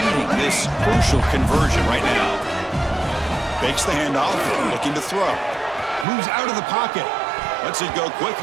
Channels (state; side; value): drops out; left; at 6.1 s